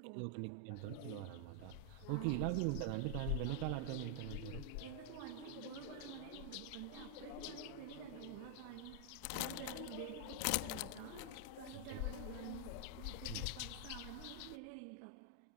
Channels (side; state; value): both; different; correlation 0.00